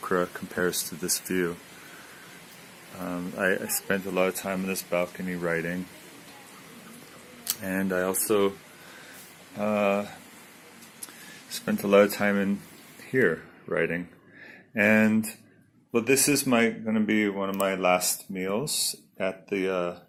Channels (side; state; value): both; identical; correlation 1.00